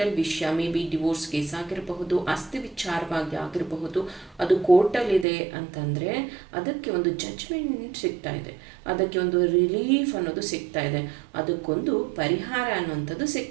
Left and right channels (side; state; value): left; drops out; at 5.2 s